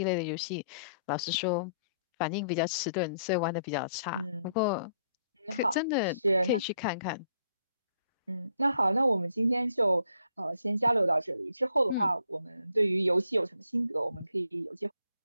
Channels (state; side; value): inverted; both; correlation -0.69